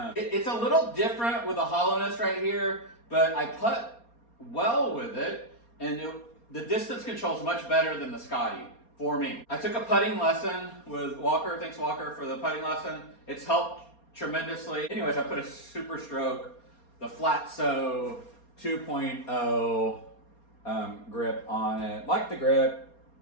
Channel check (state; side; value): late; right; 4.3 ms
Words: It's a little different with the hollowness right here, but I putt well with it, and the distance control is much better than the Scotty for me. I took a putting lesson with Walker. Thanks Walker for the putting lesson. It's helped tremendously. Anyways, I put a Super Stroke, the Flatso 2.0 grip on it. Like the grip,